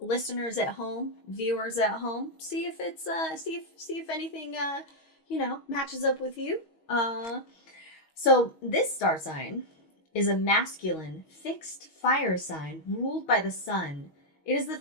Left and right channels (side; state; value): right; late; 6.3 ms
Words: Listeners at home, viewers at home, see if it's see if anything matches up with you. So this star sign is a masculine, fixed fire sign ruled by the sun. It is the